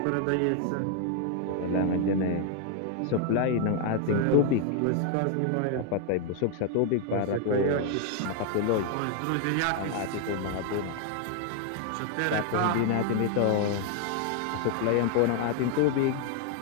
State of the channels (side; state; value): both; different; correlation 0.00